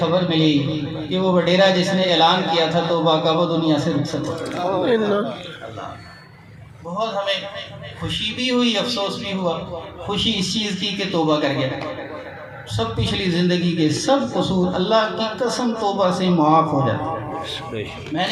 ملی کہ وہ وڈیرا جس نے اعلان کیا تھا توبہ کا، وہ دنیا سے رخصت ہو گیا. بہت ہمیں خوشی بھی ہوئی، افسوس بھی ہوا. خوشی اس چیز کی کہ توبہ کر گیا، سب پچھلی زندگی کے سب قصور اللہ کی قسم توبہ سے معاف ہو جاتے. میں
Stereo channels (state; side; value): identical; both; correlation 1.00